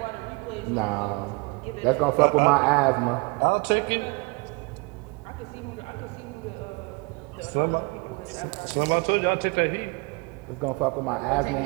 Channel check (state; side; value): quieter; left; 28.6 dB